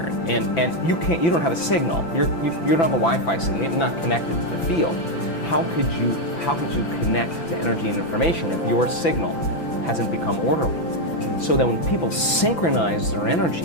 and you don't have a signal. You don't have a Wi-Fi signal. You're not connected to the field. How could you connect to energy and information if your signal hasn't become orderly? So that when people synchronize their energy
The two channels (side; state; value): right; late; 5.9 ms